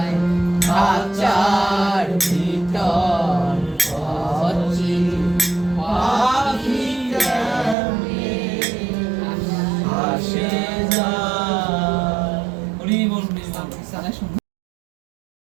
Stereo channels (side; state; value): left; drops out; at 7.8 s